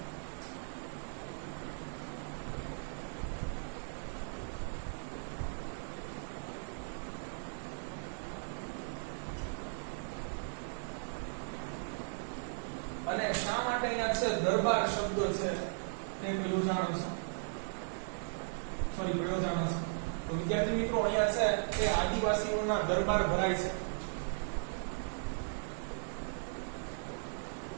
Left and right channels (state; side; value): silent; left; 53 dB below the other